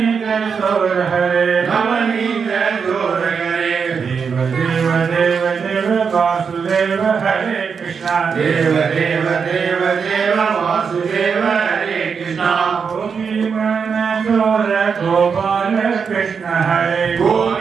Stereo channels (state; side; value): quieter; left; 6.0 dB